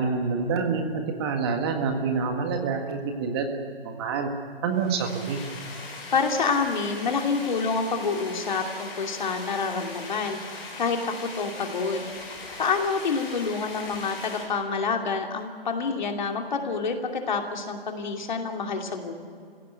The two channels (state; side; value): normal; both; correlation -0.03